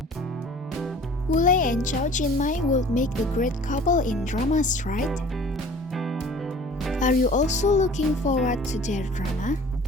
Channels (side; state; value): both; normal; correlation 0.46